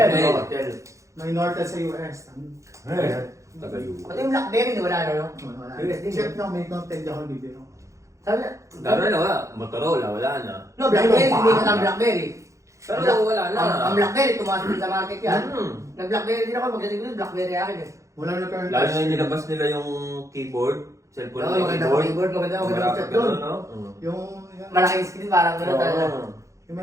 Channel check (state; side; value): late; left; 0.15 ms